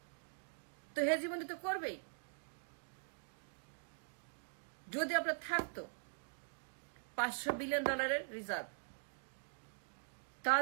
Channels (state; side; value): silent; left; digital silence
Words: তো হেজিমনি তো করবেই। যদি আপনার থাকতো $500 billion reserve,